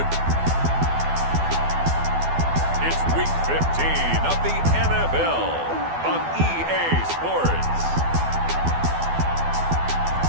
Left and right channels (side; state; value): left; late; 12 ms